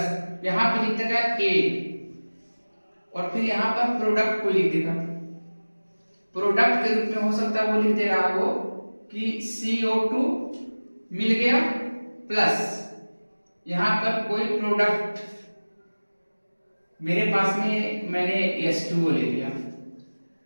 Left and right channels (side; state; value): both; inverted; correlation -1.00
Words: यहाँ पे लिख देगा A, और फिर यहाँ पर प्रोडक्ट को लिख देगा। प्रोडक्ट के रूप में हो सकता है वो लिख दे रहा हो कि CO2 मिल गया, प्लस यहाँ पर कोई प्रोडक्ट मेरे पास में मैंने H2O ले लिया,